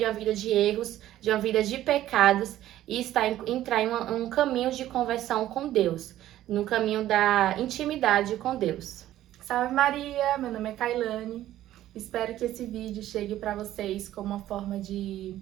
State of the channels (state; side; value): quieter; left; 13.4 dB